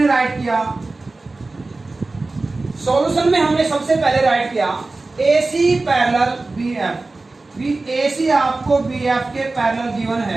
राइट किया, सॉल्यूशन में हमने सबसे पहले राइट किया ए सी पैरेलल बी एफ। ए सी आपको बी एफ के पैरेलल गिवन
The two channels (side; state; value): left; quieter; 3.4 dB